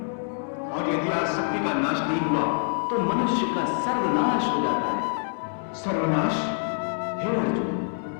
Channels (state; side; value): silent; right; digital silence